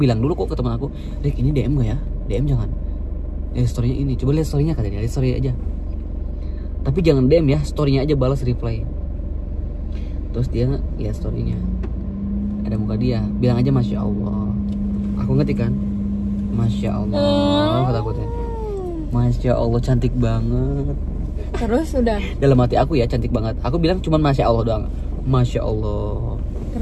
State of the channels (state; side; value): identical; both; correlation 1.00